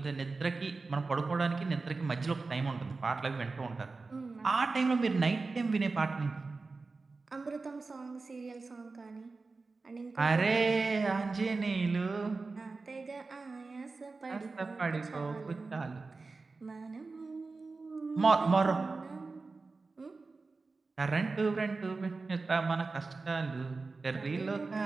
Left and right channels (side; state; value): left; quieter; 3.9 dB